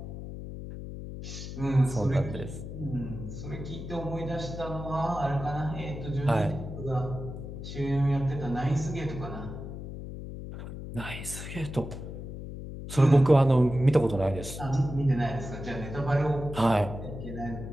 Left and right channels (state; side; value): noise; left; hum, 9 dB below the sound